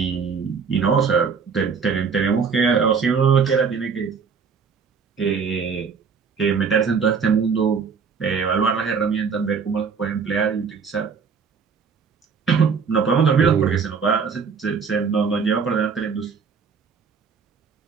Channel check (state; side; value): quieter; left; 5.8 dB